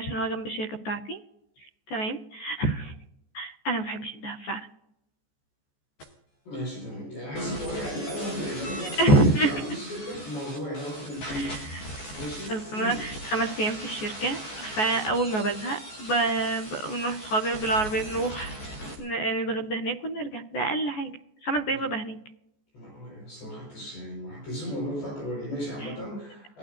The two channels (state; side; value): late; right; 14 ms